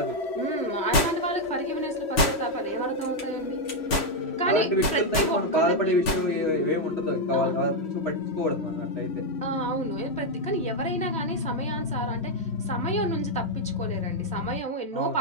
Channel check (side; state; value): right; late; 3.1 ms